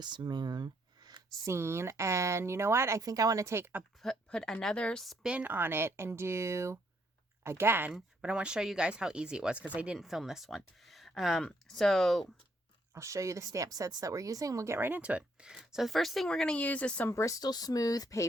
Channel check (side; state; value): both; normal; correlation 0.71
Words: moon scene. And you know what? I think I want to put another spin on it and do again, but I want to show you guys how easy it was because I didn't film this one. So I'll show you the stamp sets that we're using. We'll get right into it. So the first thing we're going to use is some Bristol Smooth